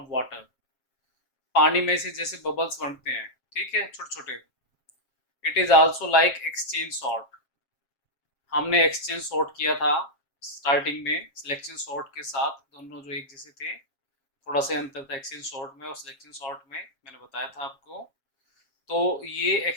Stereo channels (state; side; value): late; right; 7.4 ms